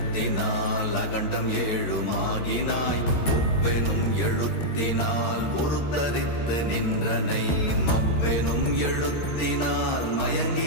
அகண்டம் ஏழுமாகினாய், உவ்வெனும் எழுத்தினால் உருத்தரித்து நின்றனை, மவ்வெனும் எழுத்தினால்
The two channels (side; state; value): right; late; 13 ms